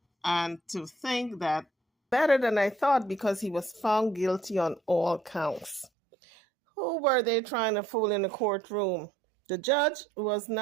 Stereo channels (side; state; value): left; drops out; at 5.9 s